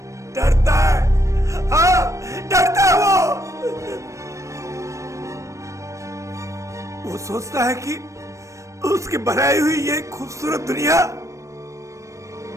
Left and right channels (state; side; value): late; left; 0.15 ms